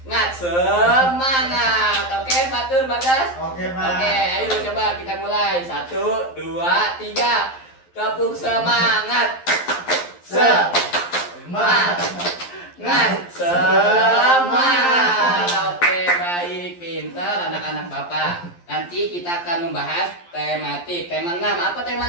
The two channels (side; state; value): right; late; 11 ms